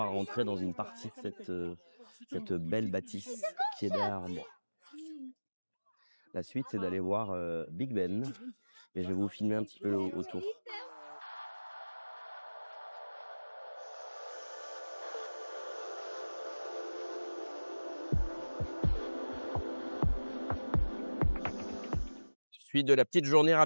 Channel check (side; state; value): both; inverted; correlation -1.00